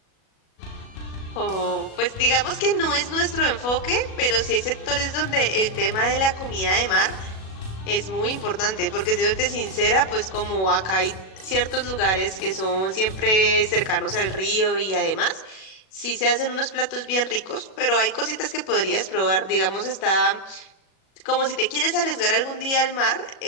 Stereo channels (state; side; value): late; right; 37 ms